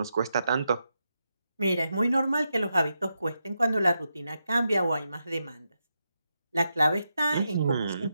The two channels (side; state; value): both; inverted; correlation -0.86